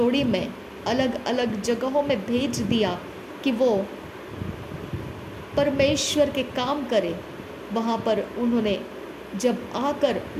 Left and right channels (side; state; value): both; identical; correlation 1.00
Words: में अलग अलग जगहों में भेज दिया कि वो परमेश्वर के काम करे, वहाँ पर उन्होंने जब